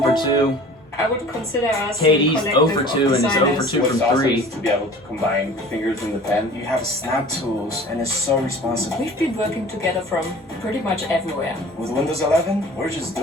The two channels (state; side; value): normal; both; correlation 0.44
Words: for 2. I would consider us KD's a 0 for 2 and is 0 for 2 What's from awesome 3. is to be able to combine fingers in the pen. You have snap tools, and it's so responsive. We've been working together from pretty much everywhere. With Windows 11, we're just